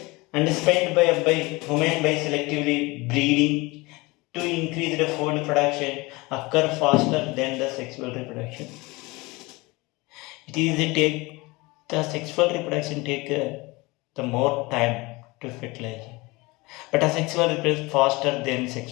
and spent by human by selectively breeding to increase the food production occur faster than the sexual reproduction. The sexual reproduction take the more time to fertilize. But asexual reproduction faster than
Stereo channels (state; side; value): quieter; right; 23.5 dB